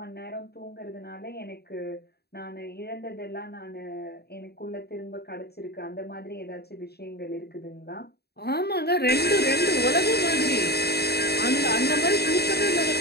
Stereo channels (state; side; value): late; right; 0.47 ms